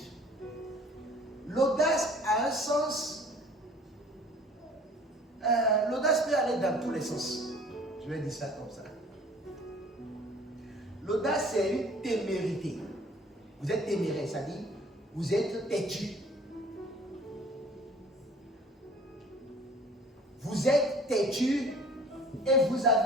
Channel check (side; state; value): both; normal; correlation 0.50